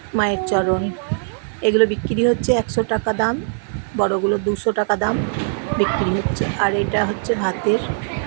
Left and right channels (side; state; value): left; silent; 57 dB below the other